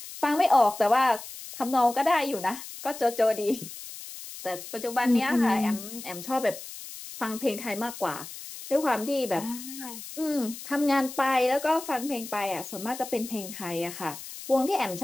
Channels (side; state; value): left; noise; hiss, 12 dB below the sound